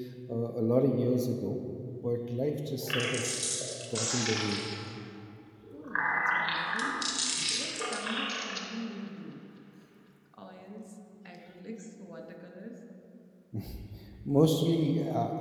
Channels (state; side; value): identical; both; correlation 1.00